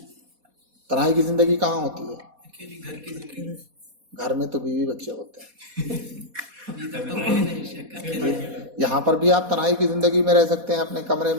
کہاں ہوتی ہے؟ اکیلی گھر کی زندگی، گھر میں تو بیوی بچے ہوتے ہیں، ابھی تک تو کوئی نہیں شک اکیلے۔ یہاں پر بھی آپ تنہائی کی زندگی میں رہ سکتے ہیں اپنے کمرے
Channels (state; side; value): late; left; 4.2 ms